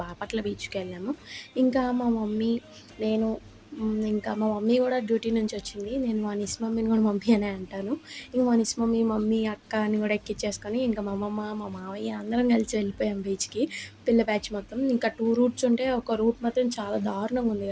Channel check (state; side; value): identical; both; correlation 1.00